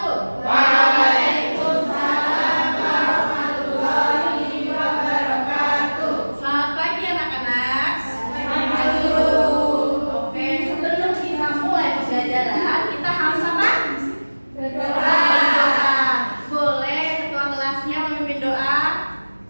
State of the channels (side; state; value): both; inverted; correlation -1.00